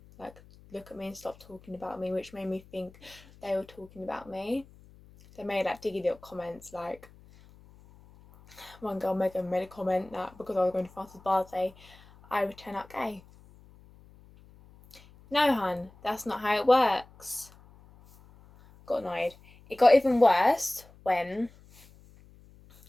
like look at me and stop talking about me, which made me think they were talking about me. They made like diggy little comments, like one girl made a comment that because I was going to France's birthday, I would turn out gay. No, hun, that's not how it works. Got annoyed. It got even worse when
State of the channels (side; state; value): left; noise; hum, 24 dB below the sound